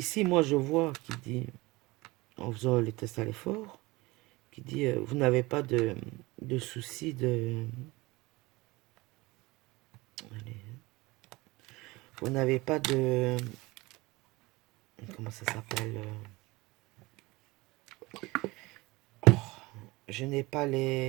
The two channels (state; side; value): quieter; left; 22.2 dB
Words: moi, je vois, qui dit, en faisant les tests à l'effort, qui dit, vous n'avez pas de souci de... Allez, vous n'avez pas de... Comment ça s'appelle je n'ai pas